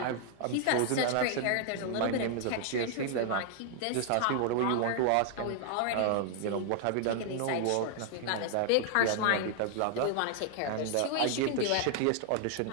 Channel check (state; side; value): different; both; correlation 0.00